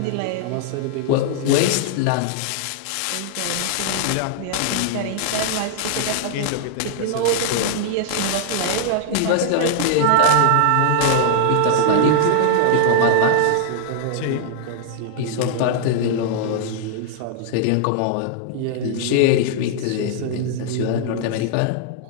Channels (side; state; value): both; different; correlation 0.00